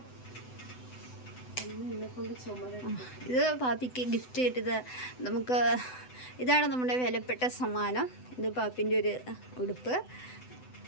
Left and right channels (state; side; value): late; right; 7.9 ms